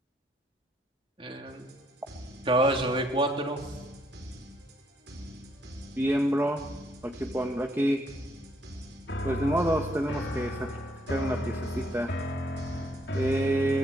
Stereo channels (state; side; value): normal; both; correlation 0.71